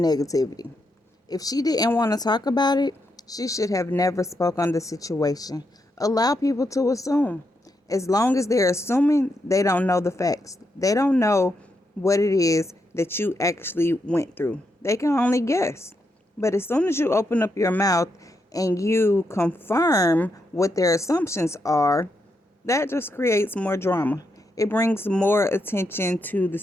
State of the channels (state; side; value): normal; both; correlation 0.82